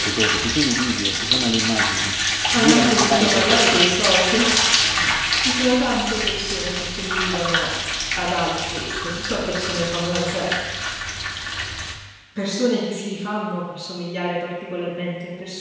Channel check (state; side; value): identical; both; correlation 1.00